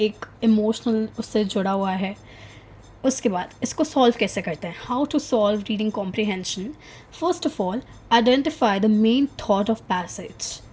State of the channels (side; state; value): both; identical; correlation 1.00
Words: इमोशनल उससे जुड़ा हुआ है. उसके बाद इसको सॉल्व कैसे करते हैं, how to solve reading comprehension. First of all, identify the main thought of passage.